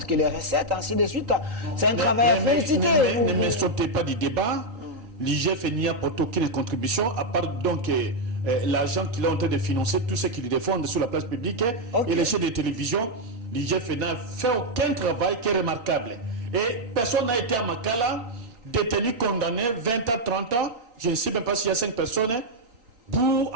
que les recettes, ainsi de suite. C'est un travail à féliciter. Ne me sautez pas du débat. L'IGF n'y apporte aucune contribution, à part donc l'argent qu'il est en train de financer, tout ce qu'il défend sur la place publique et les chaînes de télévision. L'IGF n'a fait aucun travail qui est remarquable. Et personne n'a été à Makala détenu, condamné 20 à 30 ans, je ne sais même pas s'il y a 5 personnes, pour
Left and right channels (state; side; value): late; left; 4.4 ms